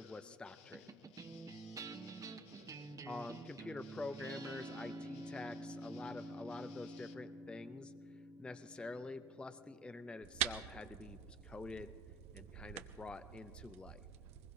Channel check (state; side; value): normal; both; correlation 0.56